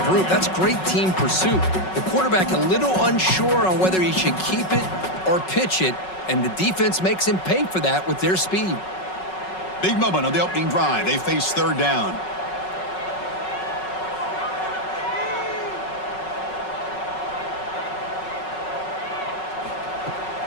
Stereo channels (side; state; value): right; late; 5.4 ms